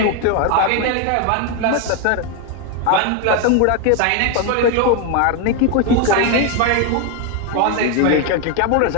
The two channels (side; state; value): both; different; correlation 0.01